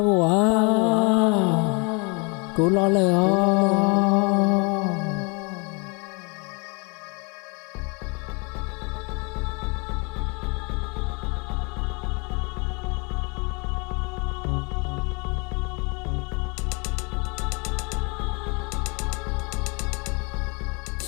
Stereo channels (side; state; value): right; quieter; 31.7 dB